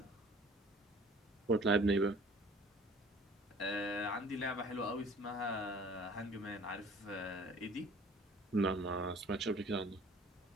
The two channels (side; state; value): both; normal; correlation 0.51